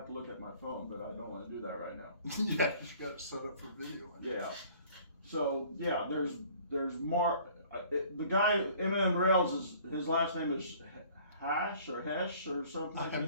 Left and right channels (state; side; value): inverted; both; correlation -0.53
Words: to look at my phone, but I don't want to do that right now. Yeah, you got it set up for video. Yeah. So yeah, there's Mark. The guy M&M Rails is his last name is Hash or Hesh or something. I have